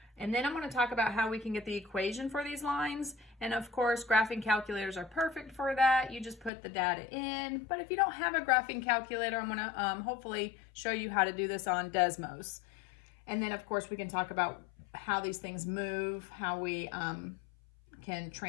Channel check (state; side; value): drops out; right; at 6.5 s